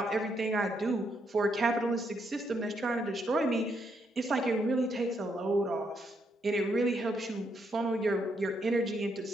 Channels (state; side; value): normal; both; correlation 0.76